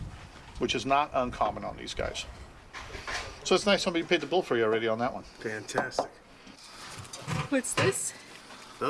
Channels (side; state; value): both; identical; correlation 1.00